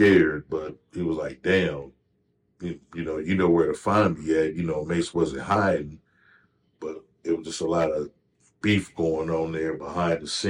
but he was like, damn, you know where to find me at. Mace wasn't hiding, but it was just a lot of beef going on there behind the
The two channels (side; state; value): both; identical; correlation 1.00